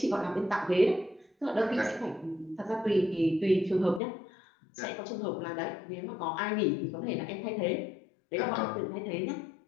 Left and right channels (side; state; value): right; drops out; at 4.0 s